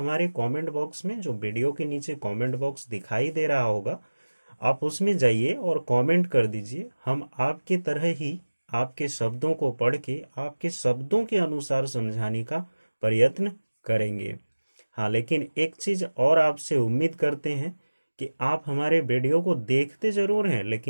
कमेंट बॉक्स में, जो वीडियो के नीचे कमेंट बॉक्स दिखाई दे रहा होगा, आप उसमें जाइए और कमेंट कर दीजिए। हम आपके तरह ही आपके शब्दों को पढ़ के आपके शब्दों के अनुसार समझाने का प्रयत्न करेंगे। हाँ, लेकिन एक चीज़ और आपसे उम्मीद करते हैं कि आप हमारे वीडियो को देखते ज़रूर हैं,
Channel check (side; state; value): both; inverted; correlation -1.00